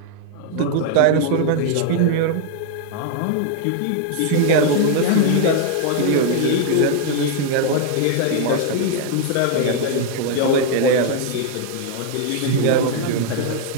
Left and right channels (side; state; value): both; different; correlation 0.00